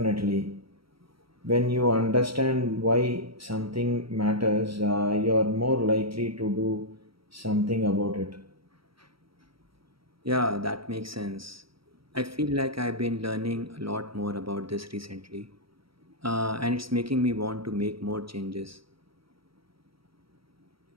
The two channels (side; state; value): left; late; 0.75 ms